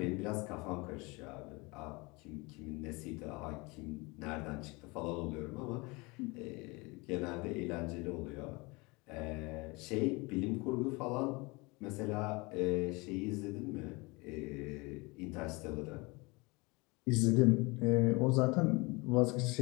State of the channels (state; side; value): quieter; right; 26.1 dB